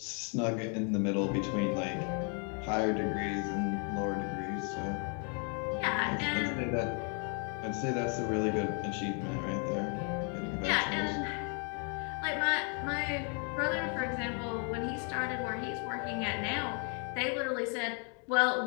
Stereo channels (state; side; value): quieter; right; 38.8 dB